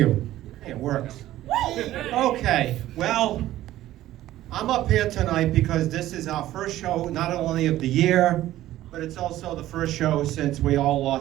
Hey, it works. Okay, well, I'm up here tonight because this is our first show, not only of the year, but it's also the first show since we all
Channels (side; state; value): left; quieter; 14.4 dB